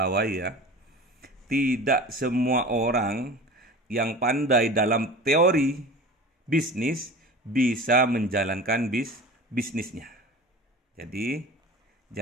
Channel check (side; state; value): both; normal; correlation 0.37